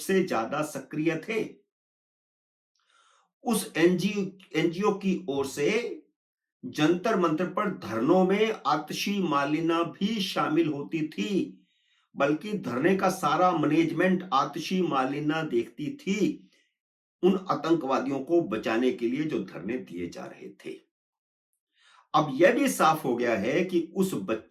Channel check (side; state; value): both; identical; correlation 1.00